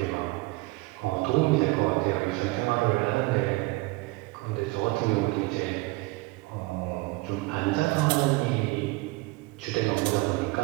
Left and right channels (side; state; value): left; quieter; 22.5 dB